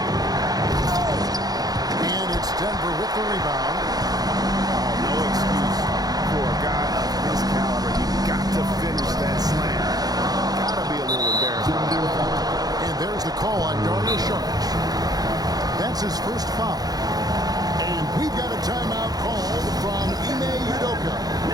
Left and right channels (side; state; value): left; late; 0.19 ms